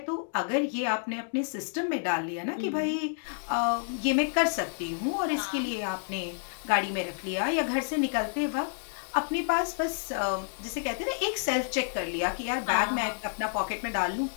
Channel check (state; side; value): silent; right; digital silence